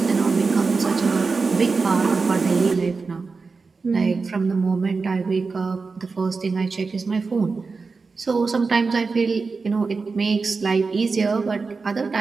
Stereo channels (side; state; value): left; quieter; 4.4 dB